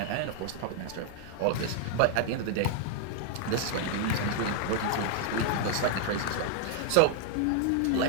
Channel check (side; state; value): both; different; correlation 0.00